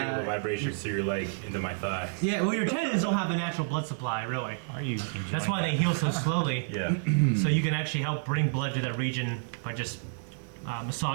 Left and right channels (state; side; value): silent; left; 58 dB below the other